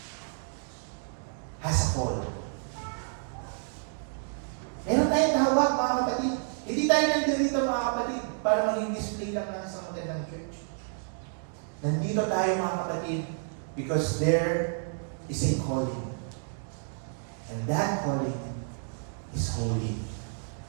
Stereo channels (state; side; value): silent; left; digital silence